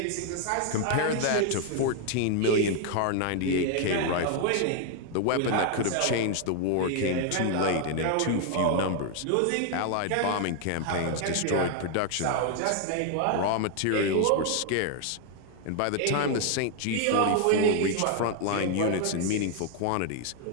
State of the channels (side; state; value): both; different; correlation 0.00